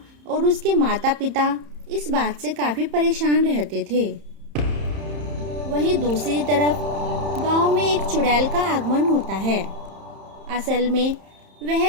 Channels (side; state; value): left; late; 31 ms